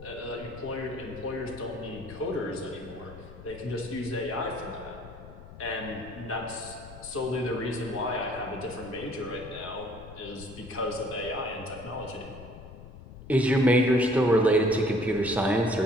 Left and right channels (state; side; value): noise; left; rumble, 16 dB below the sound